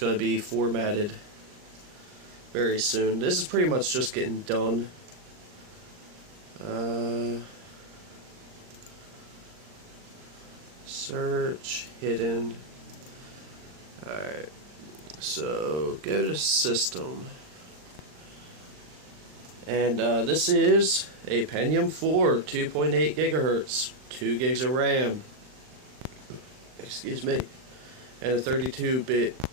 to be formatted very soon. This is pretty much just getting done. Search hidden. Alright, so go to system, and this is a Pentium 4 2.8 gigahertz, 2 gigs of RAM, excuse me, and a 32-bit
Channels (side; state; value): left; late; 39 ms